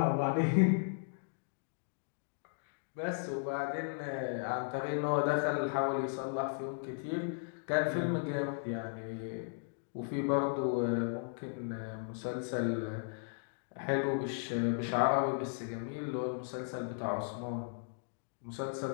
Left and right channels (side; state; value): right; silent; digital silence